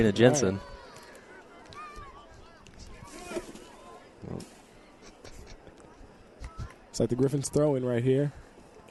Jensen. Right. It's like the Gryphons throw-in right here.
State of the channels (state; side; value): identical; both; correlation 1.00